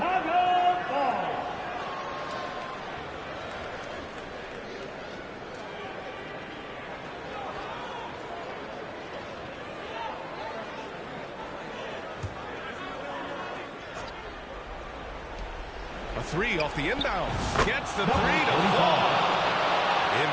ball. A three off the inbounds. Gets the three to fall.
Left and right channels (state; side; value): identical; both; correlation 1.00